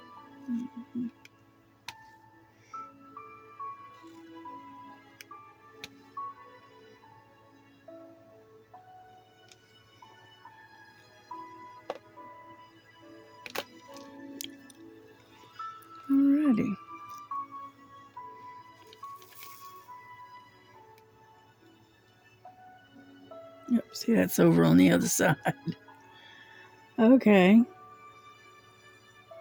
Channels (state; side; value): identical; both; correlation 1.00